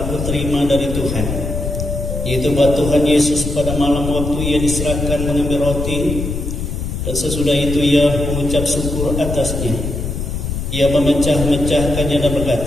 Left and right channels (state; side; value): noise; left; rumble, 4 dB below the sound